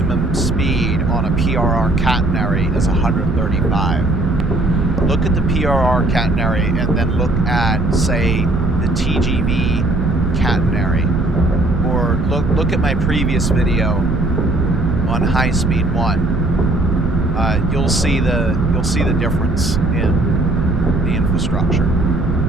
speed on a PRR catenary is 135. Look at the PRR catenary and then look at, say, the TGV catenary. Or look at my previous video on High Speed 1. You'll see the difference in the infrastructure.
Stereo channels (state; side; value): noise; right; rumble, 3 dB below the sound